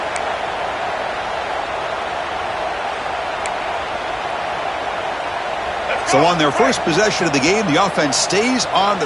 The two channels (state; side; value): identical; both; correlation 1.00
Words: So on their first possession of the game, the offense stays on